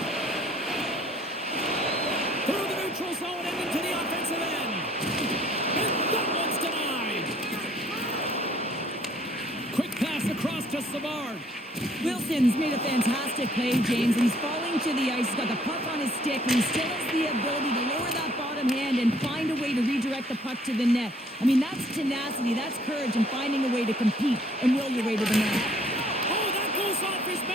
Through the neutral zone and into the offensive end. And that one's denied. Quick pass across to Savard. Wilson's made a fantastic play, James, and he's falling to the ice. He's got the puck on his stick, and he still has the ability to lower that bottom hand and find a way to redirect the puck to the net. I mean, that's tenacity, that's courage, and finding a way to compete and will your way to the net. Oh, that goes off his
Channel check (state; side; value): normal; both; correlation 0.61